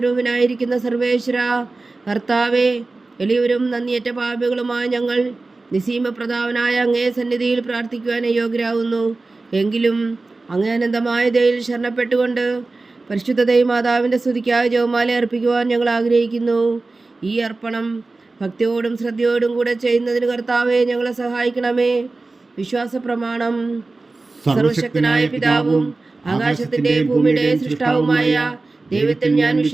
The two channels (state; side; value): quieter; left; 3.5 dB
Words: സർവേശ്വര കർത്താവേ, എളിയവരും നന്ദിയേറ്റ പാപികളുമായ ഞങ്ങൾ നിസീമപ്രതാപനായ അങ്ങേ സന്നിധിയിൽ പ്രാർത്ഥിക്കുവാൻ യോഗ്യരാകുന്നു. എങ്കിലും അങ്ങേ അനന്തമായ ദയയിൽ ശരണപ്പെട്ടുകൊണ്ട് പരിശുദ്ധ മാതാവിൻ്റെ സ്തുതിക്കായി ജപമാല അർപ്പിക്കുവാൻ ഞങ്ങൾ ആഗ്രഹിക്കുന്നു. ഈ അർപ്പണം ഭക്തിയോടും ശ്രദ്ധയോടും കൂടെ ചെയ്യുന്നതിന് കർത്താവെ ഞങ്ങളെ സഹായിക്കണമേ. വിശ്വാസ പ്രമാണം. സർവശക്തനായ പിതാവും ആകാശത്തിന്റെ ഭൂമിയുടെ സൃഷ്ടാവുമായ ദൈവത്തിൽ ഞാൻ